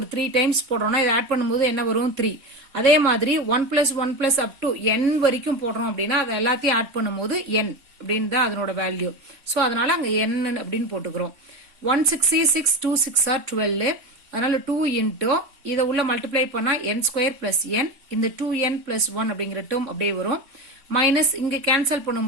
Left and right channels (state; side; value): late; left; 3.6 ms